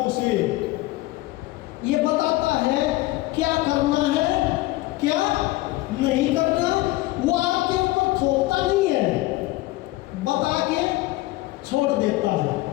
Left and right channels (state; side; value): quieter; right; 18.8 dB